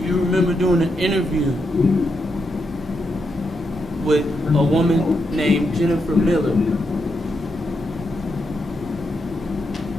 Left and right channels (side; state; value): both; normal; correlation 0.82